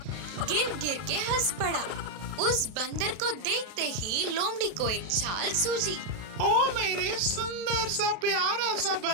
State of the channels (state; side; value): late; left; 32 ms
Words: गिर गिर के हंस पड़ा। उस बंदर को देखते ही लोमड़ी को एक चाल सूझी। ओ मेरे सुंदर सा प्यारा सा